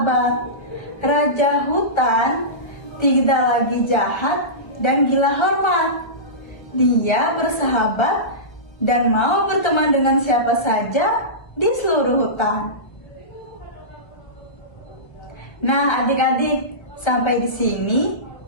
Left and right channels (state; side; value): late; right; 1.1 ms